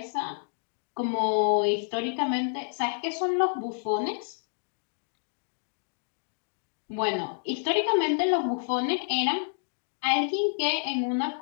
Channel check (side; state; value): right; silent; digital silence